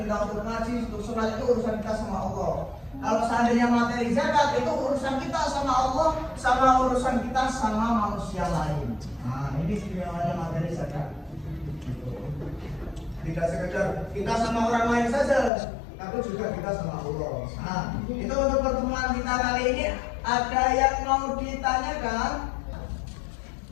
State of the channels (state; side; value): drops out; right; at 15.5 s